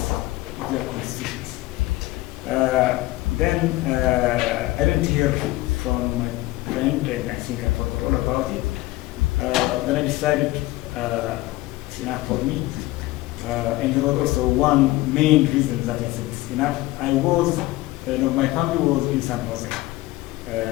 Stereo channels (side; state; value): right; quieter; 18.5 dB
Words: of their constitutions. Then I didn't hear from my friend, and I think I forgot all about it. Then I decided it's enough for me. And there was also one main reason that I said it's enough. I was, my family was in San Jose,